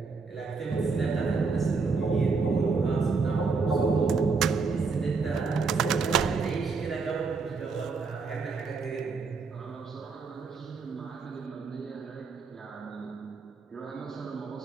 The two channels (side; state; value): left; quieter; 4.6 dB